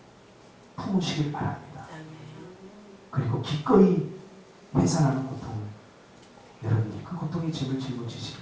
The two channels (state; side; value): identical; both; correlation 1.00